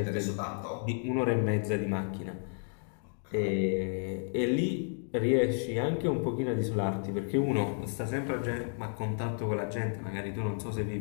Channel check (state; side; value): silent; right; 56 dB below the other